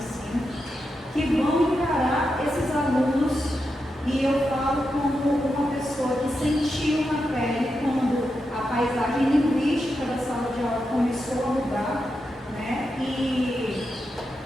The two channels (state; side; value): normal; both; correlation 0.87